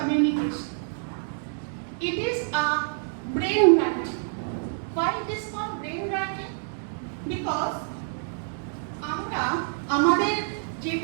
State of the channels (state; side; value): silent; left; digital silence